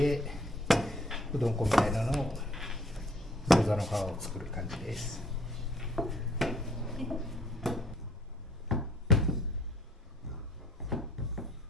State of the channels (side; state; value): both; normal; correlation 0.60